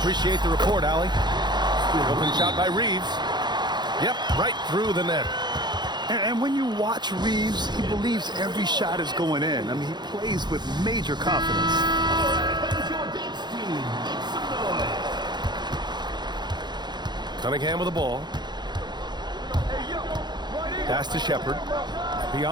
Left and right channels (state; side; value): late; left; 0.21 ms